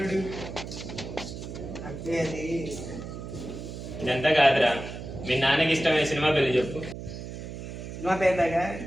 అంటే అది ఇదంతా కాదురా, మీ నాన్నకి ఇష్టమైన సినిమా పేరు చెప్పు. సినిమా పేరులాగా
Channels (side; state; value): right; noise; hum, 9 dB below the sound